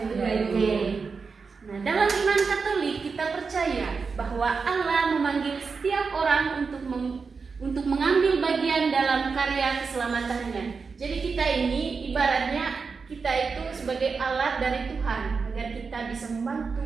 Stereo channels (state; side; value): quieter; left; 5.0 dB